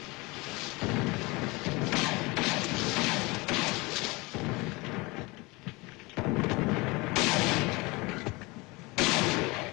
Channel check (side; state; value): right; quieter; 24.7 dB